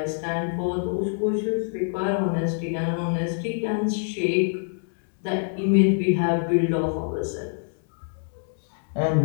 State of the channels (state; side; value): silent; right; digital silence